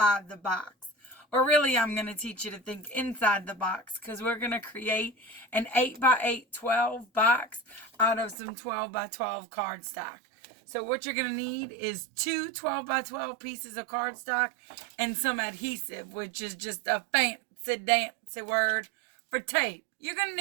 the box. Or really, I'm going to teach you to think inside the box because we're going to create an 8 by 8 12 box out of some 12 by 12 cardstock. So what you're going to need is two 12 by 12 pieces of cardstock and some adhesive, which is just a fancy dancy word for tape. You're going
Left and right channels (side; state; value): left; drops out; at 8.3 s